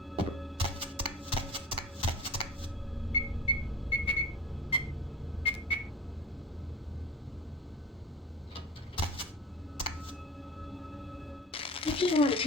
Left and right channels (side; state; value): both; normal; correlation 0.37